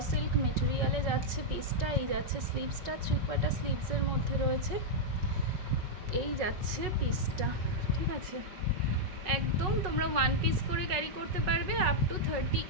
সিল্ক মেটেরিয়ালে যাচ্ছে পিসটা। এই যাচ্ছে স্লিভসটা, 3/4 স্লিভসের মধ্যে রয়েছে। এই যাচ্ছে পিসটা, ঠিক আছে। একদম তোমরা ওয়ান পিস করে ক্যারি করতে পারবে, আপ টু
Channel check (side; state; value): left; late; 5.3 ms